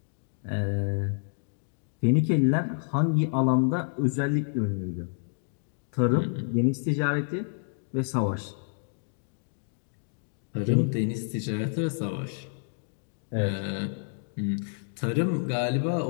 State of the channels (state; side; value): silent; right; digital silence